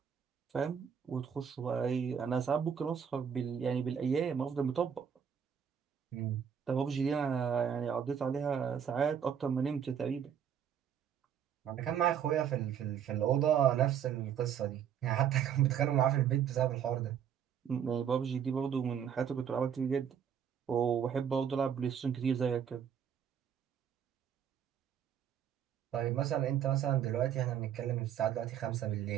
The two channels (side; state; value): left; quieter; 8.3 dB